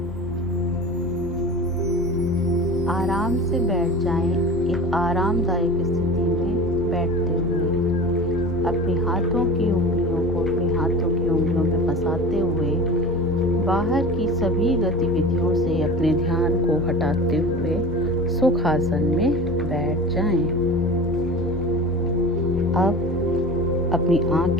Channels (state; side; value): noise; left; hum, 18 dB below the sound